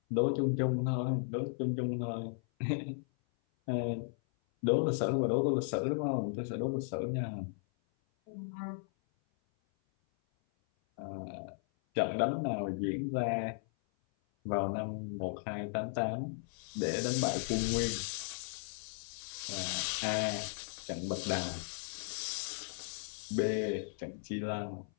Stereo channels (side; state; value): right; silent; 54 dB below the other